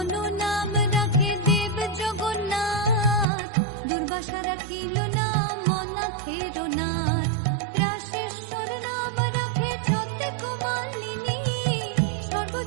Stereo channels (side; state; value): left; drops out; at 3.2 s